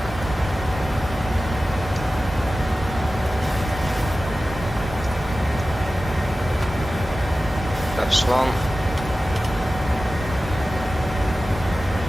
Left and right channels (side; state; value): both; normal; correlation 0.95